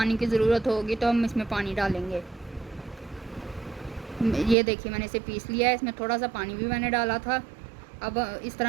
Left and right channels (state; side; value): drops out; left; at 4.5 s